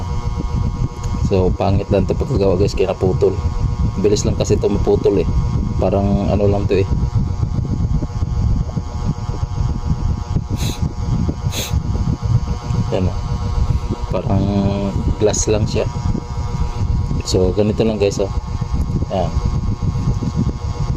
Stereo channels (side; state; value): both; identical; correlation 1.00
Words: So pangit lang to pagkagawa guys, kaya naputol. Bilis lang kasi to maputol eh. Parang ano lang to eh. Yan, parang glass lang siya. So ganito lang guys, oh. Yan.